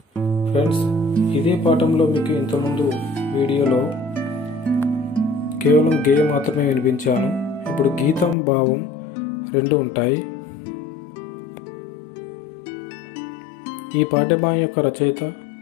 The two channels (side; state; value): right; drops out; at 8.3 s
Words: Friends, ఇదే పాఠంలో మీకు ఇంతకుముందు వీడియోలో కేవలం గే మాత్రమే వినిపించాను. ఇప్పుడు గీతం, భావం రెండు ఉంటాయి. ఈ పాఠ్యభాగం యొక్క రచయిత